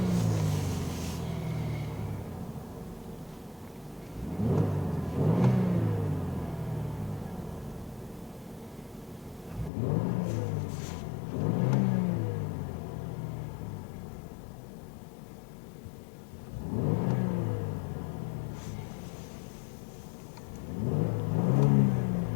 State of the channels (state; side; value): drops out; right; at 9.7 s